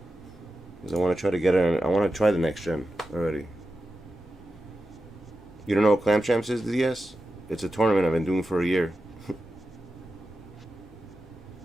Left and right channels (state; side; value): normal; both; correlation 0.92